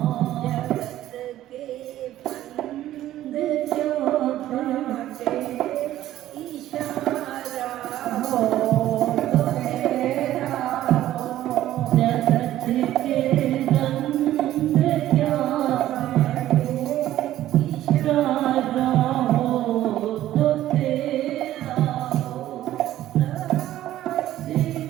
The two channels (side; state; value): left; quieter; 13.6 dB